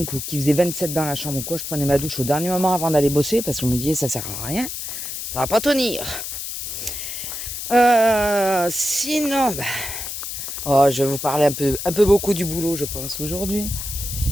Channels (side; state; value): left; noise; hiss, 6 dB below the sound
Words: ou qu'il faisait 27 dans la chambre ou quoi, je prenais ma douche au dernier moment avant d'aller bosser parce que je me disais ça sert à rien, ça va pas tenir. Sinon, je vais vous parler un peu beaucoup du boulot, je pense, aujourd'hui.